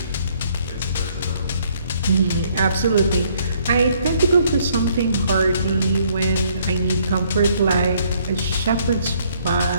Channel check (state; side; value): inverted; both; correlation -0.65